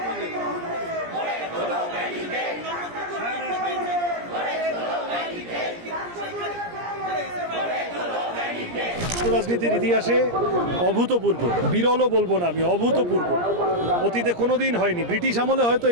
রাজনীতির ইতিহাসে অভূতপূর্ব, বিরলও বলবো না আমি, অভূতপূর্ব, অতীতে কোনোদিন হয়নি। ব্রিটিশ আমলে হয়তো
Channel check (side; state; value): left; late; 17 ms